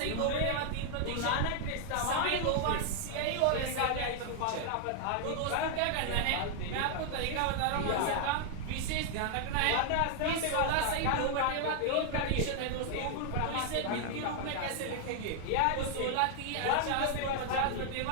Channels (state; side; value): different; both; correlation 0.00